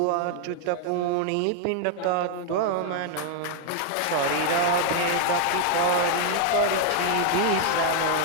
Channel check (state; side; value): different; both; correlation 0.00